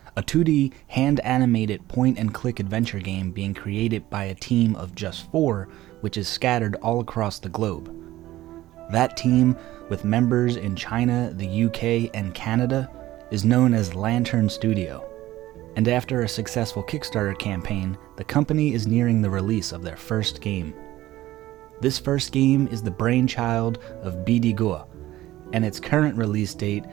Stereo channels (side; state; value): left; quieter; 15.7 dB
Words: a 2D hand-animated point-and-click adventure game being created by a team of just 4, which is scattered all across the globe. That team, with members in China, the UK, and Canada, is known as Lantern Studio. And after a successful Kickstarter campaign, the company is nearing the release of their first game. This first game is the brainchild of Bidigua, and its current release date,